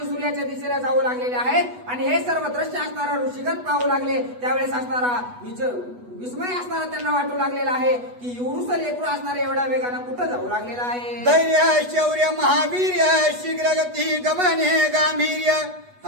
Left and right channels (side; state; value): left; late; 8.2 ms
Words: सूर्याच्या दिशेला जाऊ लागलेले आहेत. आणि हे सर्व दृश्य असणारा ऋषीगण पाहू लागले. त्यावेळेस असणारा विस्मय असणारा त्यांना वाटू लागलेला आहे की एवढूस लेकरू असणारे एवढ्या वेगानं कुठं जाऊ लागलेला आहे. धैर्य शौर्य महावीर्य शीघ्र गती गमने गांभीर्य